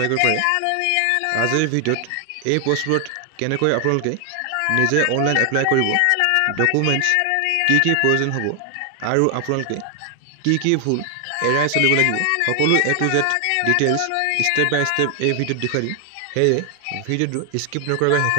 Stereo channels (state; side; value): different; both; correlation 0.00